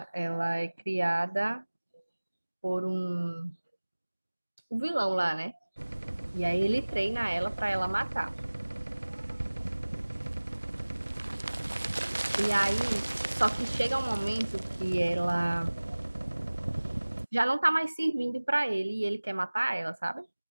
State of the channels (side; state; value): both; inverted; correlation -1.00